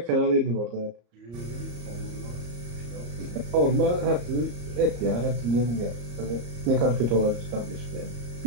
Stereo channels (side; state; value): left; late; 34 ms